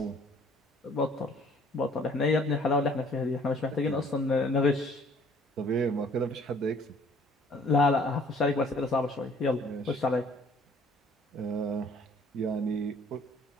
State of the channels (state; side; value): normal; both; correlation 0.56